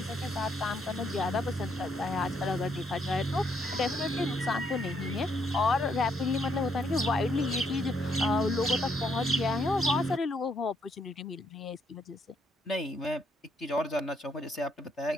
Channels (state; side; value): normal; both; correlation 0.73